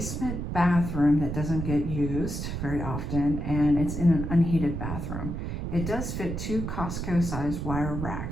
bathroom that doesn't get used very often, and it's in an unheated bathroom. It does fit 2 Costco sized wire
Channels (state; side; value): noise; right; rumble, 4 dB below the sound